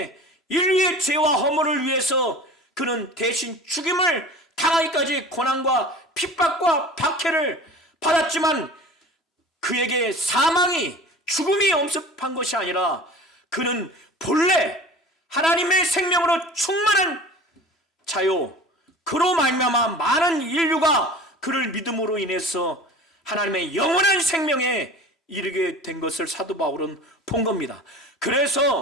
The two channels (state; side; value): normal; both; correlation 0.40